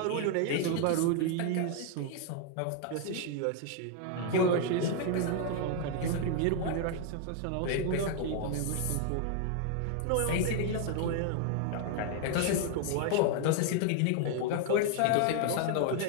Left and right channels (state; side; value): different; both; correlation 0.00